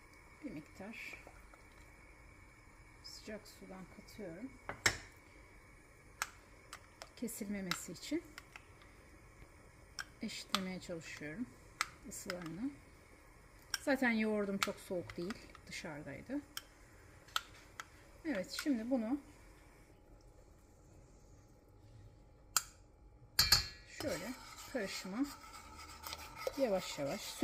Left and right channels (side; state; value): both; identical; correlation 1.00